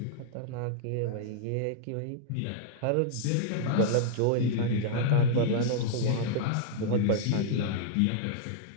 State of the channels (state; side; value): different; both; correlation -0.01